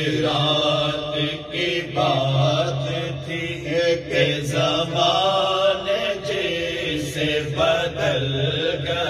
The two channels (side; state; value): both; identical; correlation 1.00